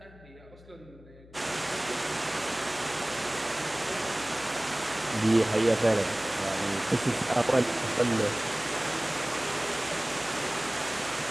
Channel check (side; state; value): left; noise; hum, 22 dB below the sound